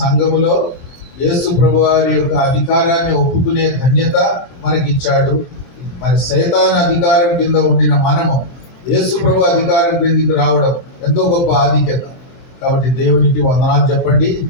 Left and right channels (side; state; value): right; late; 24 ms